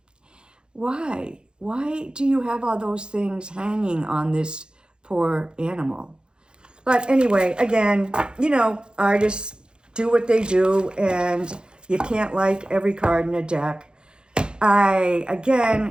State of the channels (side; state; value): left; late; 0.049 ms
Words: why? Why do you have all those things hanging on this poor animal? But anyway, again, you know, artists do what they do, and you can't like every card in a deck. I,